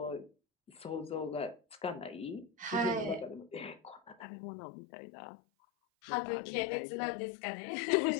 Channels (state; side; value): drops out; right; at 4.2 s